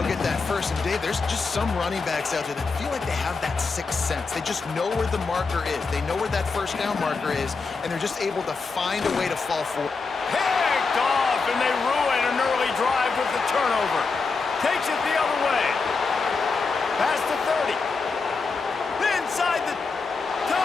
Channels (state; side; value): quieter; right; 4.5 dB